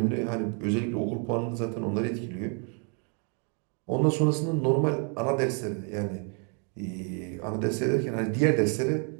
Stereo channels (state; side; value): quieter; left; 39.0 dB